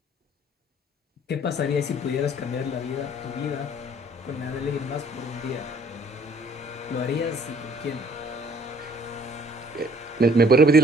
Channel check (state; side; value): normal; both; correlation 0.58